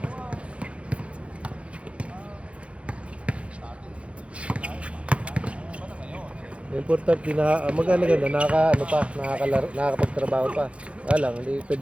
Importante na maganda nakakapagtrabaho pa. Lang, hindi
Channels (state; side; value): late; left; 0.061 ms